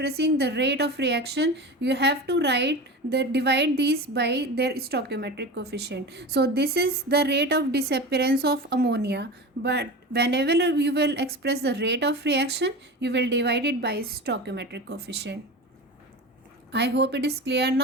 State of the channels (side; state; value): both; normal; correlation 0.29